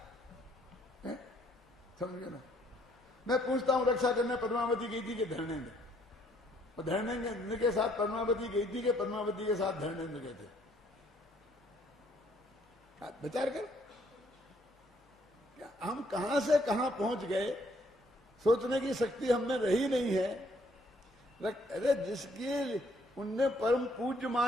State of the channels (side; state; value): both; normal; correlation 0.66